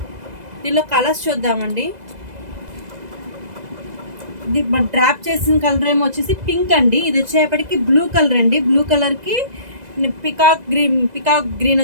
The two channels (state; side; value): late; left; 2.0 ms